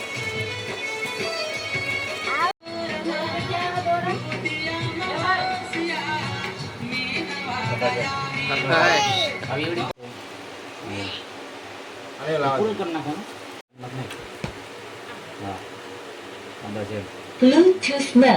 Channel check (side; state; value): both; identical; correlation 1.00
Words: પૂરું કરી નાખો. Bluetooth